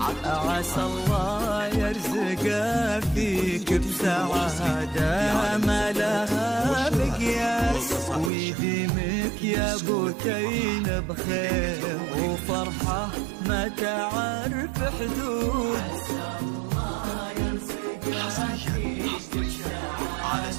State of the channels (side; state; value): left; drops out; at 8.3 s